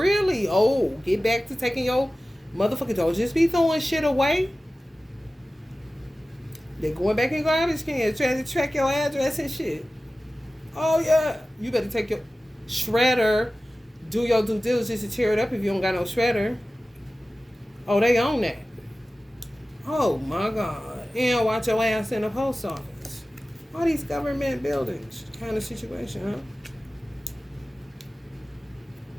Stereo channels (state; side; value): normal; both; correlation 0.96